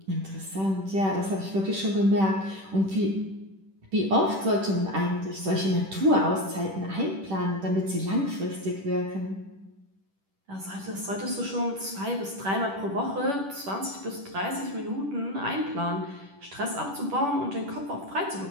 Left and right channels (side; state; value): left; late; 10 ms